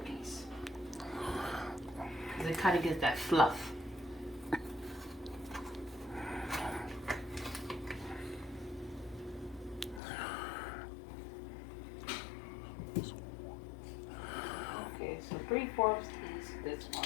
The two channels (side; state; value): right; drops out; at 10.0 s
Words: Because it kind of gives that fluff. So 3/4 this